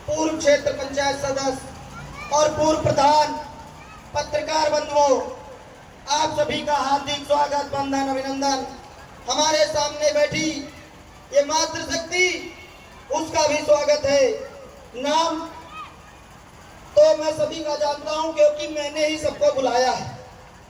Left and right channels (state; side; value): identical; both; correlation 1.00